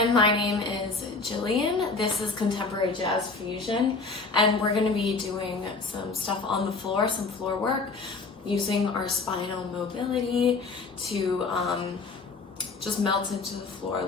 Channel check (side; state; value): right; quieter; 4.0 dB